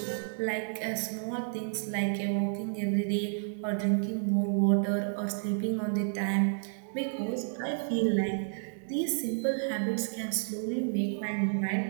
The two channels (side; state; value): left; silent; digital silence